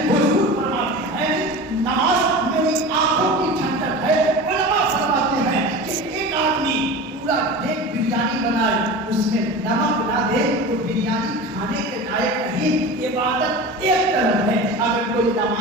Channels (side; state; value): both; normal; correlation 0.32